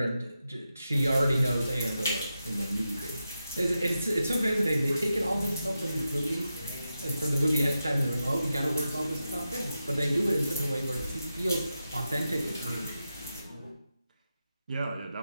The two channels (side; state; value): both; inverted; correlation -0.90